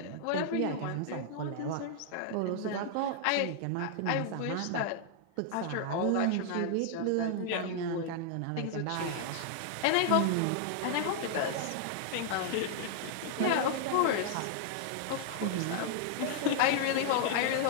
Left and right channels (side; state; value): both; different; correlation -0.01